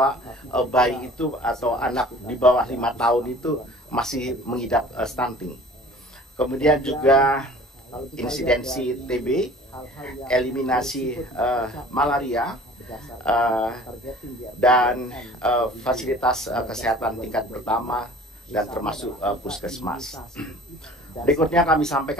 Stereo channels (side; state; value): both; normal; correlation 0.46